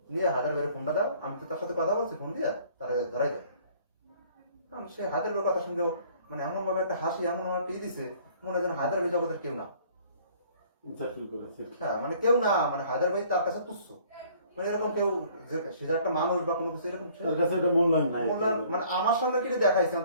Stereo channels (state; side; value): inverted; both; correlation -0.57